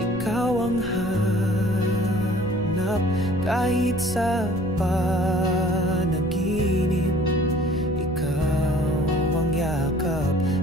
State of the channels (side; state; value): left; noise; rumble, 12 dB below the sound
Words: ang hanap. Kahit sa panaginip, ikaw ang yakap.